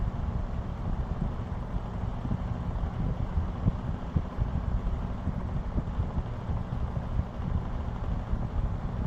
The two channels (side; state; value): both; identical; correlation 1.00